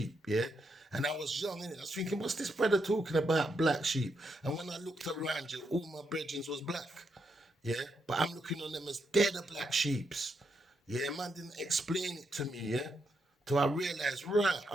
yeah. And I was young, innit? I was thinking, what's this brother talking about, black sheep? And when I looked around you, all my brethren was black. Yeah, but I'm looking on them as they're the black sheeps. Yeah, man didn't explain it to me, yeah. Till I realized, right,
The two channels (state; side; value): normal; both; correlation 0.81